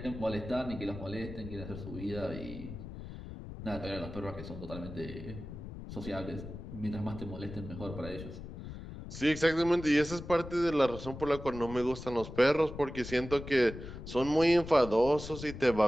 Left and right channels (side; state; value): left; noise; rumble, 11 dB below the sound